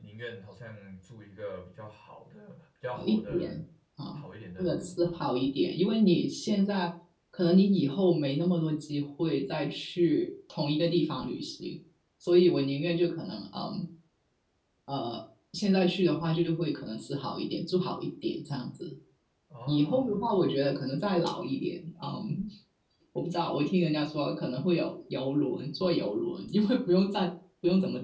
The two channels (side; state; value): both; identical; correlation 1.00